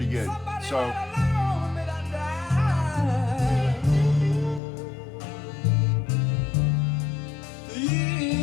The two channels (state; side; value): drops out; right; at 4.6 s